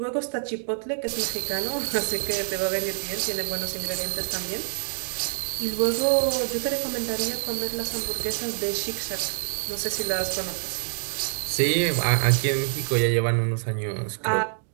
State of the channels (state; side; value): silent; left; 61 dB below the other